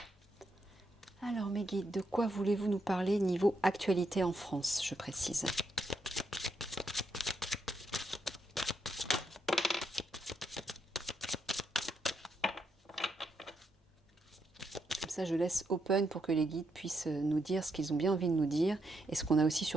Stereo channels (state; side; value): normal; both; correlation 0.80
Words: Alors mes guides, de quoi voulez-vous nous parler niveau actualité en France, je précise? Comme ça je laisse open pour que les guides puissent nous dire ce qu'ils ont bien envie de nous dire et ce qu'on a aussi